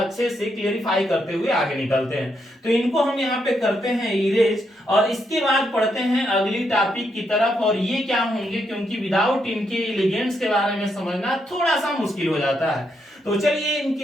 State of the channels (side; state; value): both; normal; correlation 0.79